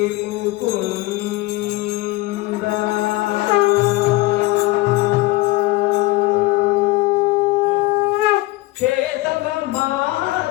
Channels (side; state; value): right; quieter; 19.9 dB